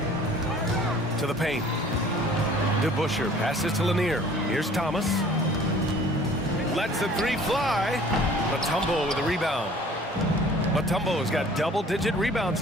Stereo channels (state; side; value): normal; both; correlation 0.51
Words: To the paint. DeBusschere passes to Lanier. Here's Thomas. Lets the 3 fly. Mutombo with a rebound. Mutombo's got double-digit rebounds